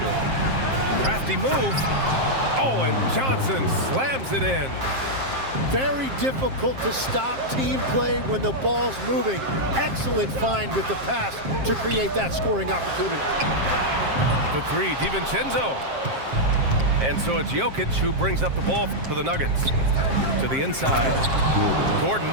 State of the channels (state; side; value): late; left; 7.5 ms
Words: Crafty move. Oh, and Johnson slams it in. Very difficult to stop team play when the ball's moving. Excellent find with the pass to create that scoring opportunity. For three, DiVincenzo. And so it's Jokic who brings up the ball for the Nuggets. To the inside. Gordon.